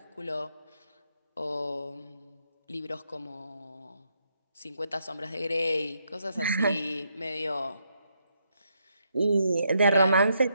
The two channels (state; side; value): inverted; both; correlation -0.77